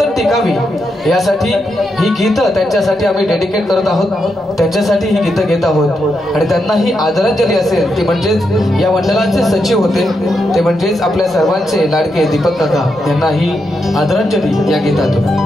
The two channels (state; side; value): normal; both; correlation 0.83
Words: टिकावी यासाठी ही गीतं त्यांच्यासाठी आम्ही डेडिकेट करत आहोत. त्यांच्यासाठी ही गीतं घेत आहोत आणि त्यांना ही आदरांजली असेल ती म्हणजेच या मंडळाचे सचिव होते ते म्हणजेच आपल्या सर्वांचे लाडके दीपक काका यांना ही आदरांजली या गीतातून.